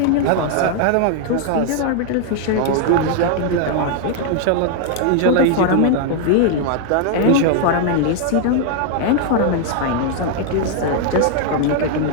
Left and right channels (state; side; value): different; both; correlation 0.00